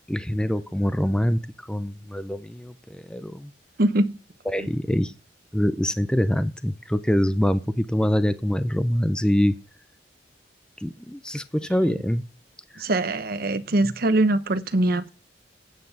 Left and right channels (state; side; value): normal; both; correlation 0.86